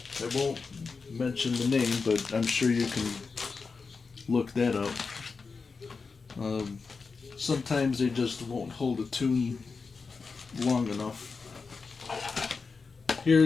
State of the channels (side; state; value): right; quieter; 4.7 dB